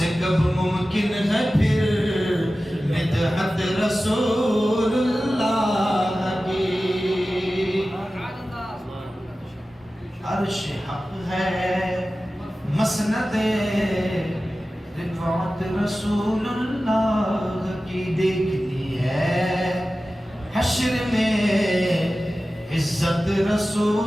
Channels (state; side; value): normal; both; correlation 0.95